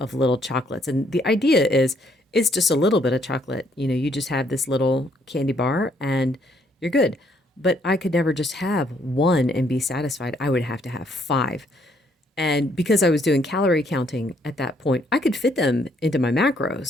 of little chocolates. And the idea is it's just a little bit of chocolate. You know, you just have this little candy bar and you're good. But I could never just have one and be satisfied. I would have to have five. And because I was doing calorie counting at that point, I could fit them into my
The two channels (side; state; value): both; normal; correlation 0.69